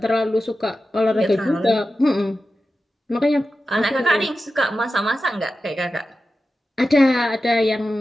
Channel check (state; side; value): normal; both; correlation 0.93